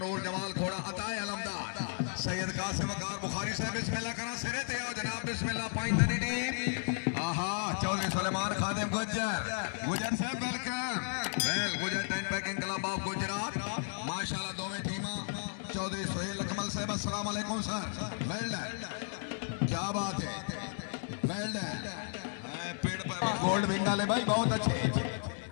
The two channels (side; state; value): right; silent; digital silence